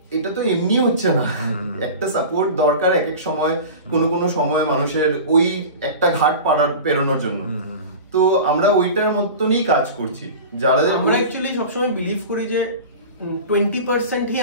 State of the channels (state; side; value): inverted; both; correlation -0.33